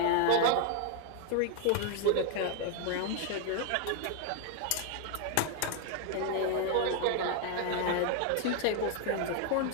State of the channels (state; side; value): different; both; correlation 0.00